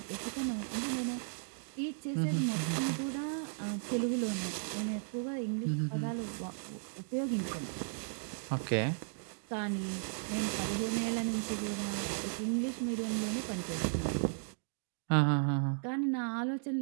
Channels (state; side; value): silent; left; 54 dB below the other